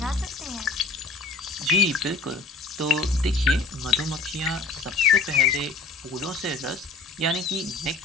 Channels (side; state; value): right; quieter; 3.9 dB